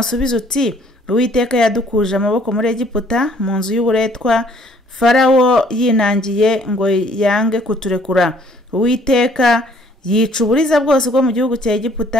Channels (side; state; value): both; normal; correlation 0.61